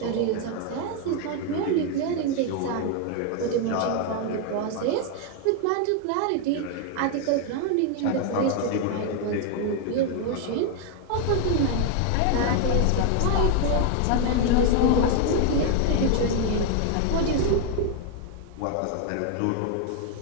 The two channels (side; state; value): both; different; correlation 0.00